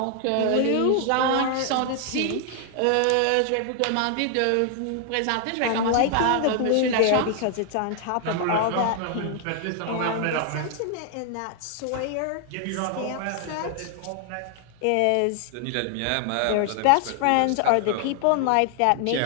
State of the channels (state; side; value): different; both; correlation 0.00